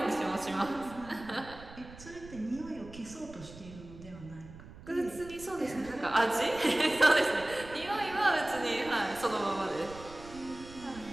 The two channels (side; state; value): right; noise; rumble, 17 dB below the sound